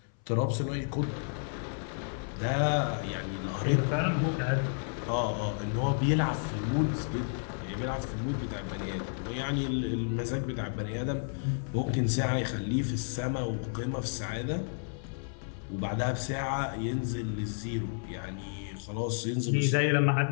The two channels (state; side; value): silent; right; 57 dB below the other